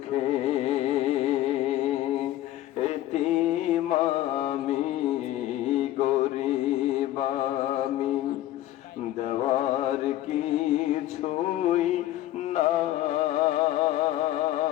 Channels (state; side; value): quieter; right; 14.3 dB